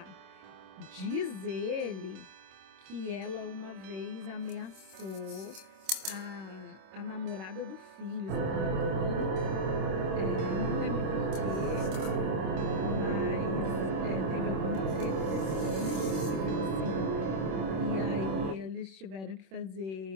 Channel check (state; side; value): late; left; 26 ms